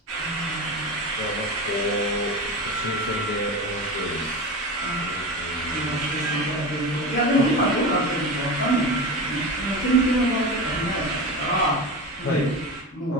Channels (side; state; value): both; normal; correlation 0.25